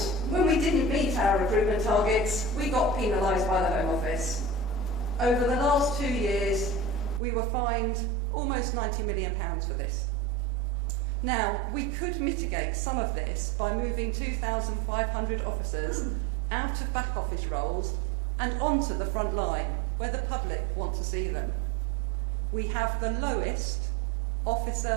when we didn't meet our recruitment targets, we got penalised by the Home Office. Over the last 2 years, we were fined almost £90 million for this. Now, we could mitigate some of this by moving 2,500 officers out of back office roles and onto the front line, where the public want to see them. We have the lowest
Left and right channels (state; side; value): drops out; left; at 7.2 s